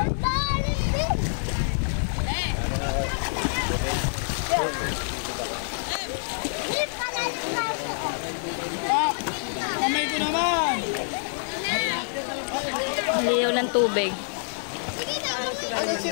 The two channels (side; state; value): right; silent; digital silence